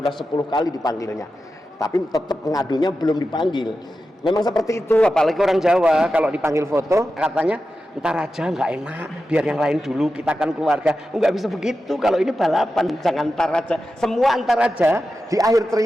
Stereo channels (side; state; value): both; normal; correlation 0.91